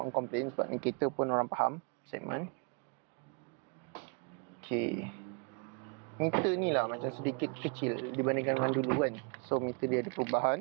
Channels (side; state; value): left; quieter; 36.6 dB